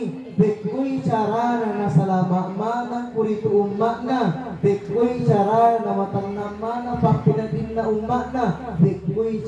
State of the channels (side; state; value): both; identical; correlation 1.00